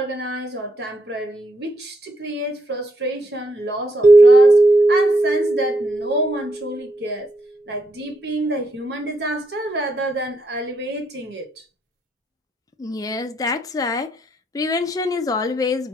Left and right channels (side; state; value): both; normal; correlation 0.78